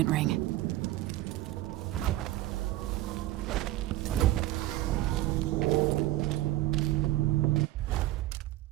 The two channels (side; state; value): left; quieter; 15.9 dB